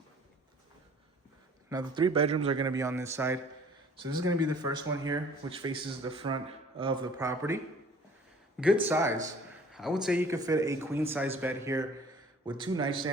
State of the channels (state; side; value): normal; both; correlation 0.51